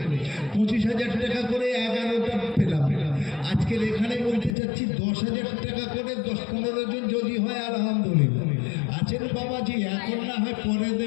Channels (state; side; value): drops out; right; at 4.5 s